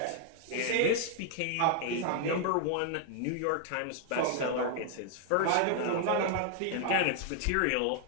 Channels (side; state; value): both; different; correlation 0.00